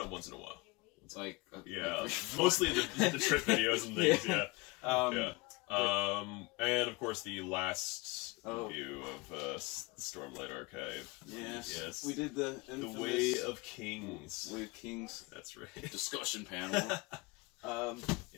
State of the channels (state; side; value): quieter; right; 25.5 dB